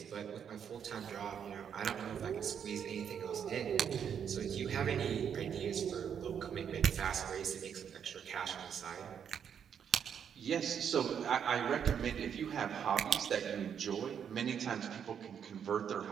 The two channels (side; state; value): left; quieter; 8.0 dB